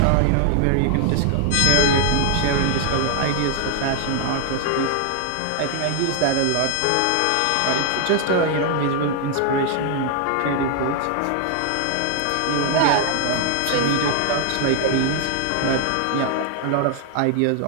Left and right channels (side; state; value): both; different; correlation 0.00